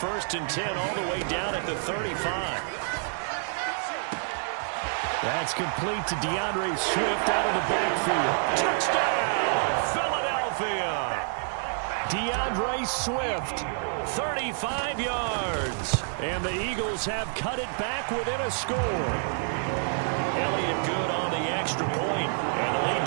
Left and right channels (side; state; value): left; silent; 59 dB below the other